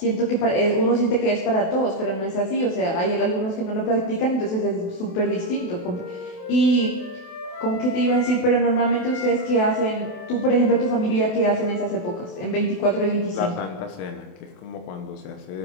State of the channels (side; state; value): right; late; 28 ms